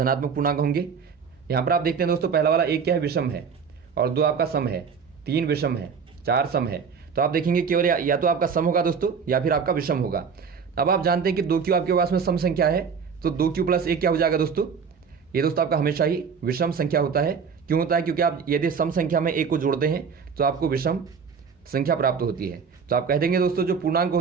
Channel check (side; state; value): left; quieter; 6.1 dB